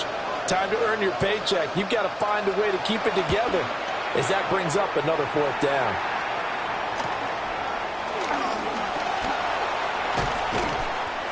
time to earn your paycheck. You've got to find a way to keep it together as that brings up another 4th down.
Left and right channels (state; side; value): identical; both; correlation 1.00